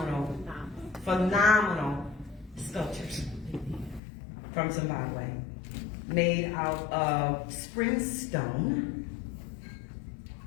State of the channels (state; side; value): drops out; right; at 4.0 s